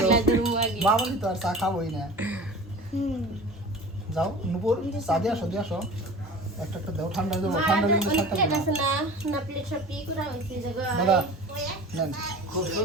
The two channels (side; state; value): both; normal; correlation 0.38